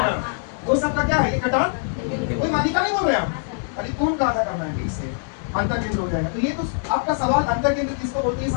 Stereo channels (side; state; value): right; silent; digital silence